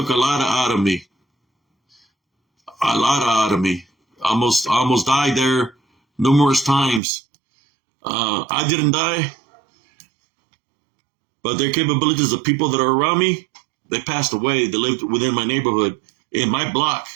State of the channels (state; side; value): drops out; left; at 7.0 s